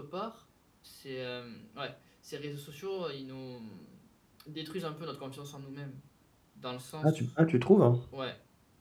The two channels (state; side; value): identical; both; correlation 1.00